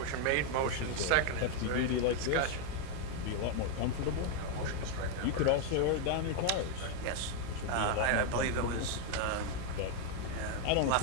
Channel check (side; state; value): both; different; correlation 0.01